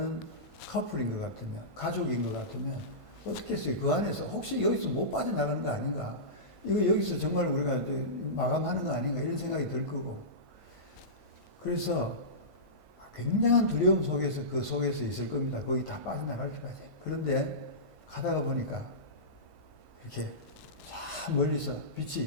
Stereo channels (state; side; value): late; left; 1.5 ms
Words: 커플인 것 같으면, 가족인 것 같으면 어떻게 했어요? 그 안에서 혹시 여기서 못 빠져나가는 거 아닌가? 이거 여기서 정말 우리가 마감하는 거 아닌가? 이런 생각이 들 거고. 그래서 굉장한 두려움 속에서 그 속에서 있을 겁니다. 거기 다 빠져나갈 때까지. 그런데 가다가 보니까 이렇게 참 멀리서